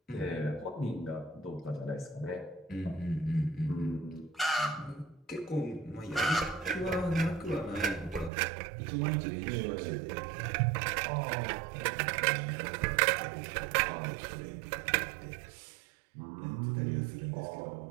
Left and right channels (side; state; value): left; drops out; at 8.3 s